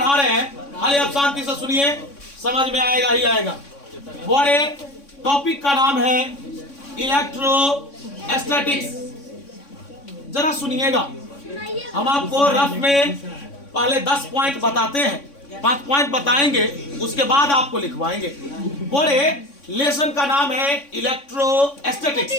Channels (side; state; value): right; late; 3.6 ms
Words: रहे हैं खाली आप शांति से सुनिए, समझ में आएगा ही आएगा। बड़े टॉपिक का नाम है इलेक्ट्रोस्टैटिक्स। जरा सुनिएगा, हम आपको रफ में पहले 10 पॉइंट बताते हैं, 5 पॉइंट बताएंगे, उसके बाद आपको लिखवाएंगे। बड़े लेसन का नाम है